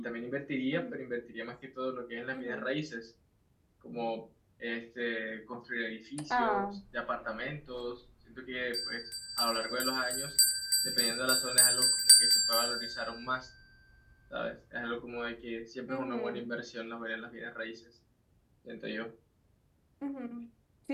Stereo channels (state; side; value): identical; both; correlation 1.00